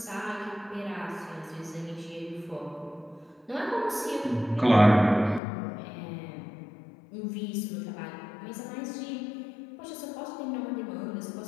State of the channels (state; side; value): drops out; right; at 5.4 s